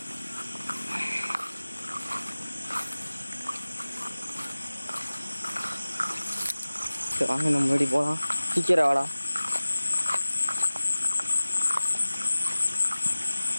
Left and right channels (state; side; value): inverted; both; correlation -0.97